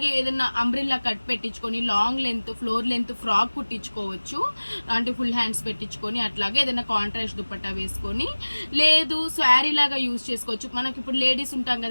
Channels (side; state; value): both; inverted; correlation -1.00